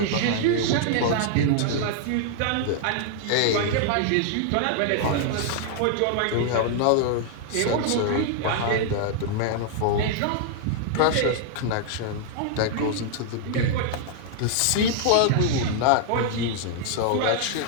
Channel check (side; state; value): both; different; correlation 0.00